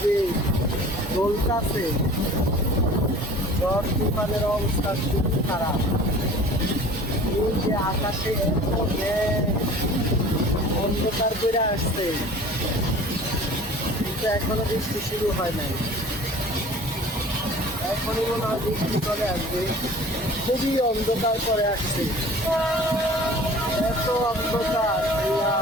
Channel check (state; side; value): normal; both; correlation 0.44